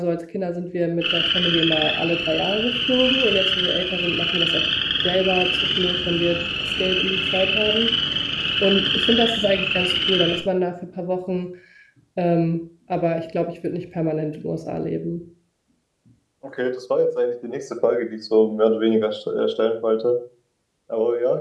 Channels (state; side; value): identical; both; correlation 1.00